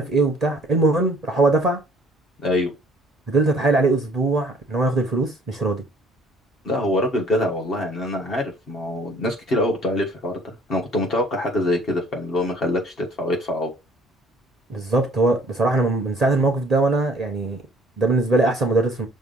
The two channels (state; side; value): normal; both; correlation 0.57